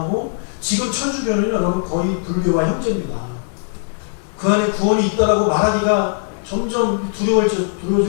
지금 천주교는 여러분 거의 불교와 형제입니다. 그 안에 구원이 있다라고 말하기가 점점 두려워질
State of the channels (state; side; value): silent; right; digital silence